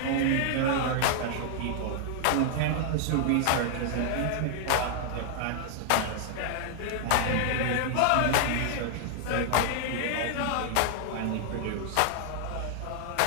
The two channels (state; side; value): different; both; correlation 0.00